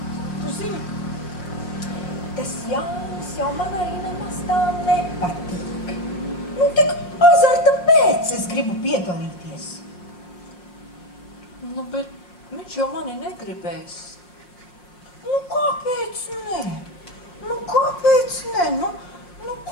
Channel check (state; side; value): late; right; 5.5 ms